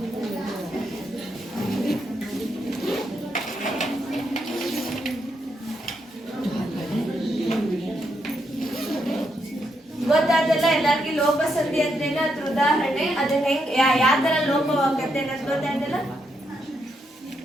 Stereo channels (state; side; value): normal; both; correlation 0.79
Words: ಗೊತ್ತಾದಲ್ಲ ಎಲ್ಲರಿಗೂ ಲೋಪ ಸಂಧಿ ಅಂದ್ರೇನು, ಅದ್ರ ಉದಾಹರಣೆ, ಅದನ್ನ ಹೆಂಗ್ ಯಾವ ತರ ಲೋಪವಾಗತ್ತೆ ಅನ್ನೋದು ಗೊತ್ತಾಯ್ತಲ್ಲ.